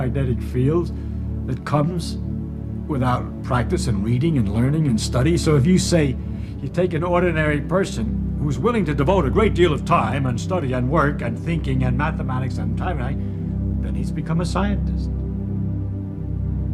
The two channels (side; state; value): both; identical; correlation 1.00